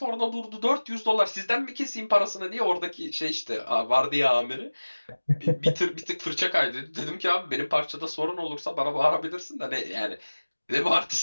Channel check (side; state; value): both; inverted; correlation -1.00